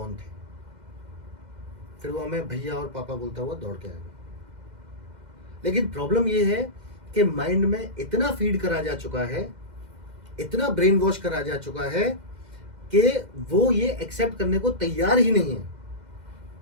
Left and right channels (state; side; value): late; left; 2.1 ms